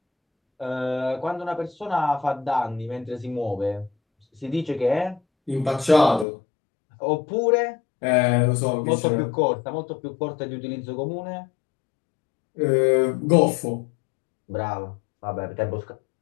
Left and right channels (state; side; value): drops out; right; at 6.2 s